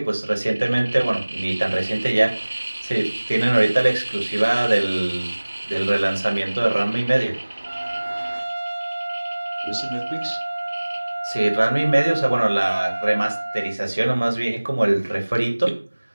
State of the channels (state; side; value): inverted; both; correlation -1.00